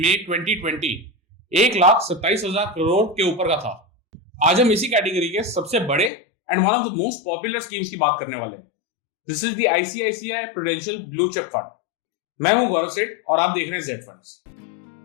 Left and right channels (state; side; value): drops out; right; at 6.1 s